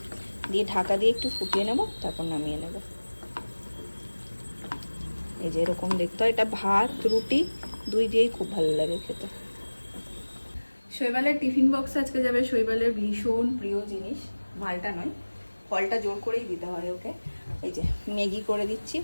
দিয়ে ঢাকা দিয়ে একটু ফুটিয়ে নেব, তারপর নামিয়ে নেব। এই যে এরকম দেখতে হয়। এটা ভাত, রুটি দুই দিয়েই খুব ভালো লাগে খেতে। শৈবালের টিফিন বক্স আজকে যাবে শৈবালের ভীষণ প্রিয় জিনিস, মালটা নয়, ফলটা জোর করেই দিতে হয় ওকে। এই যে ম্যাগি করে দিচ্ছি,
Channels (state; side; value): inverted; both; correlation -1.00